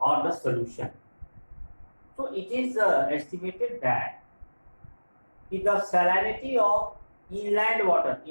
or the solution. So it is estimated that the salinity of inland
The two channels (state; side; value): inverted; both; correlation -1.00